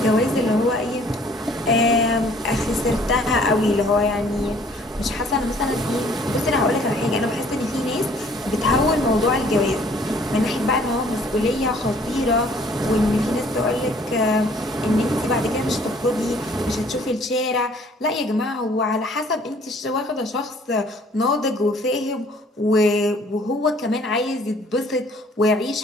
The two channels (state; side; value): normal; both; correlation 0.57